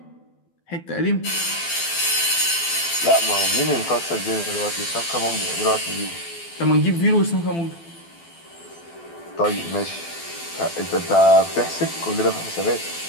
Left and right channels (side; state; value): right; late; 12 ms